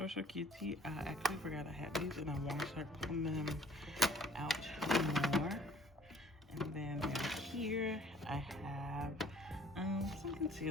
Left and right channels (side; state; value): both; normal; correlation 0.55